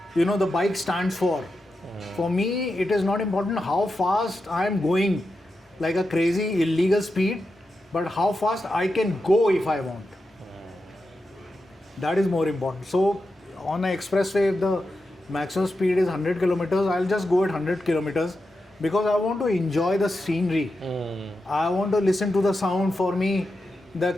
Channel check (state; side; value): normal; both; correlation 0.89